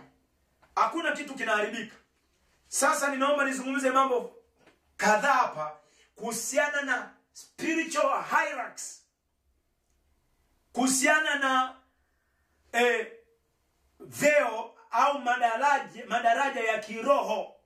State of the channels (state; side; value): identical; both; correlation 1.00